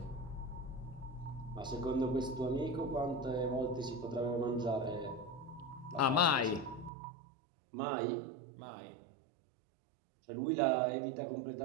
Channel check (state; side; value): drops out; left; at 6.9 s